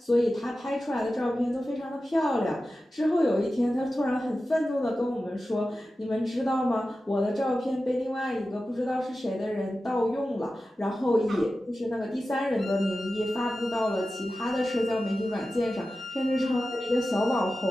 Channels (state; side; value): normal; both; correlation 0.94